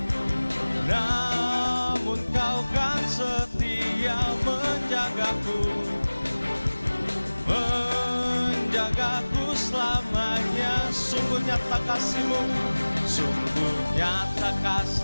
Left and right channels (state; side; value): inverted; both; correlation -1.00